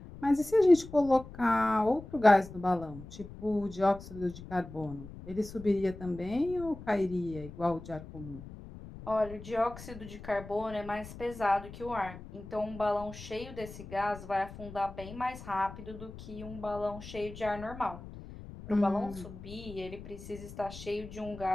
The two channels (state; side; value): noise; left; rumble, 14 dB below the sound